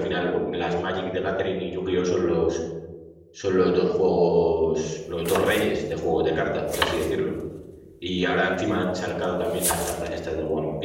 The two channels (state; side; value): identical; both; correlation 1.00